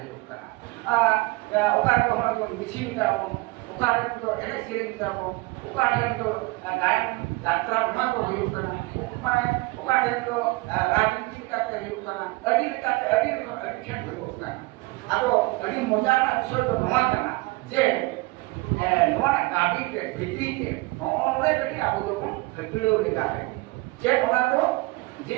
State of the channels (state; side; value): quieter; left; 23.3 dB